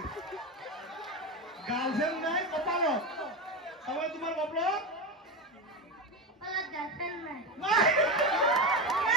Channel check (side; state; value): both; normal; correlation 0.17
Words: গার্লফ্রেন্ড নাই কপালত সবাই তোমার কপালত কপালত গার্লফ্রেন্ড নাই